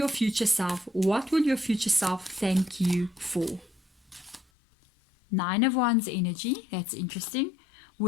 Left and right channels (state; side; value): drops out; right; at 4.5 s